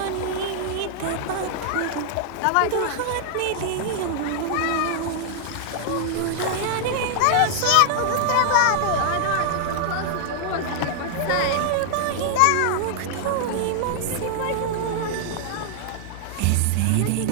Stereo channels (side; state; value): both; different; correlation 0.00